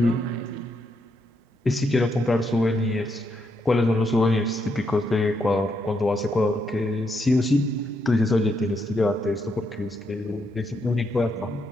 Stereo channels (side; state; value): both; normal; correlation 0.79